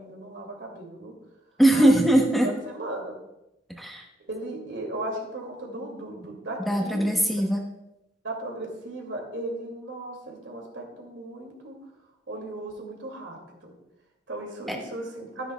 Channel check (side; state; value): both; normal; correlation 0.79